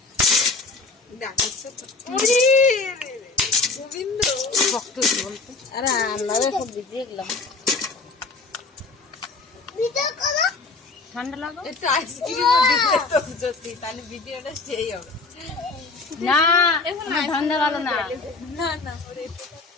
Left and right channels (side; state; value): right; quieter; 3.9 dB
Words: গোবিন্দ ভক্ত বলতো। আরে আমরা সব ভিজিয়ে গেলাম। ঠান্ডা লাগো একটু আইসক্রিম দিতে তো যদি, তাহলে ভিডিওটা সেই হবে। না ঠান্ডা ভালো না। না না